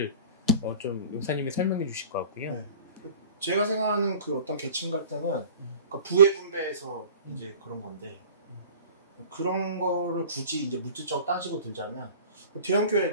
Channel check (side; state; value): both; inverted; correlation -0.42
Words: 좀 용사님이 설명해 주실 것 같고요. 네. 제가 생각하는 그 어떤 계층 갈등은 그러니까 부의 분배에서 이제 그런 건데, 그런 거를 굳이 이제 물질적으로 따지고 들자면